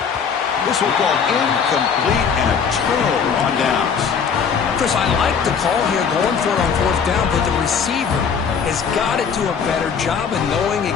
This will go incomplete and a turnover on downs. Chris, I like the call here going for it on 4th down, but the receiver has got to do a better job of knowing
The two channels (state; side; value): quieter; right; 6.5 dB